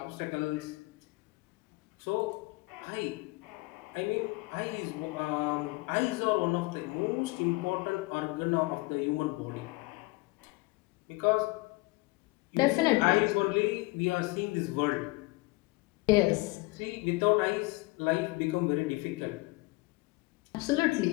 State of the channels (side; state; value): right; quieter; 23.5 dB